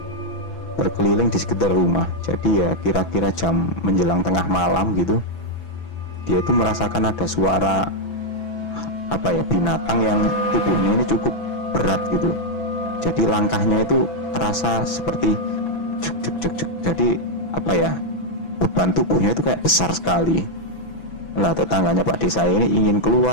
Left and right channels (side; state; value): right; late; 6.0 ms